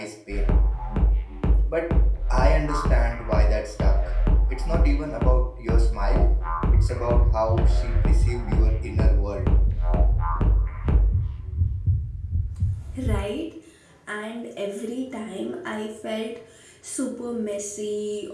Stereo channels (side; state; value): both; identical; correlation 1.00